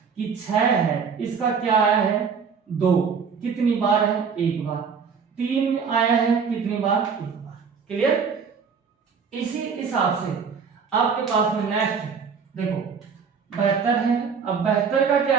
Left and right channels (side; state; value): left; quieter; 6.0 dB